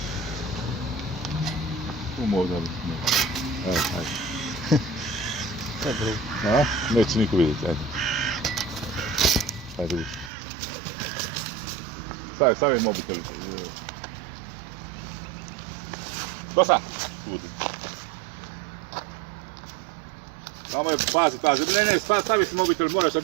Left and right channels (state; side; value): drops out; left; at 10.3 s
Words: Tu možda bi se. Evo, ajde. To je drugo. A? Neće niko vidjeti, ajde. Ajde, vidi. Stavi mobitel. Dosta! Budi. Samo je, pazi. Ne, stavi si mobitel, moraš sa